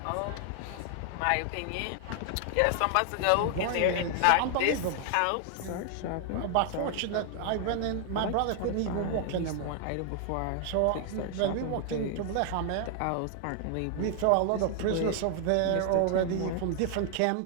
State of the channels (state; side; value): different; both; correlation 0.00